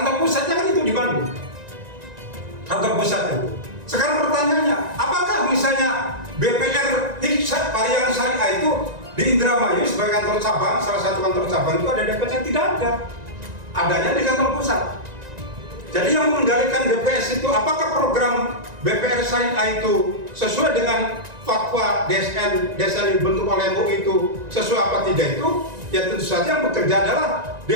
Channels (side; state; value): left; late; 1.9 ms